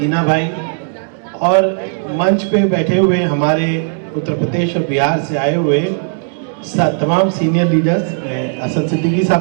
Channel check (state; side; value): silent; left; 67 dB below the other